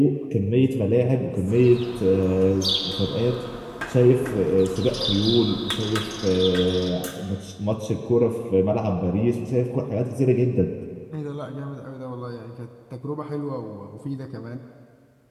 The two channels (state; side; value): identical; both; correlation 1.00